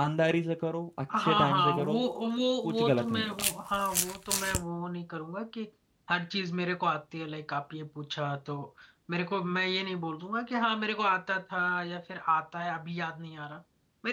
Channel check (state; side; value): identical; both; correlation 1.00